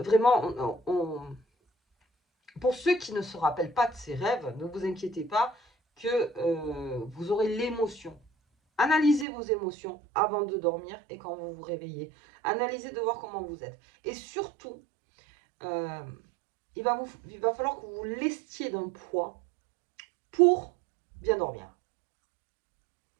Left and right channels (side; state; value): left; drops out; at 9.2 s